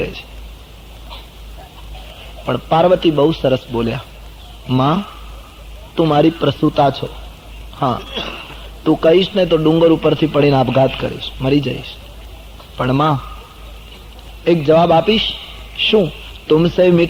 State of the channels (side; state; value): both; identical; correlation 1.00